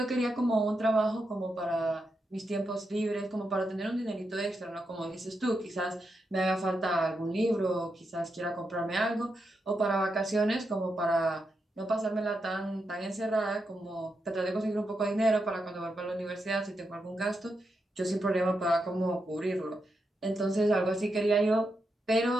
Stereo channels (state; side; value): normal; both; correlation 0.85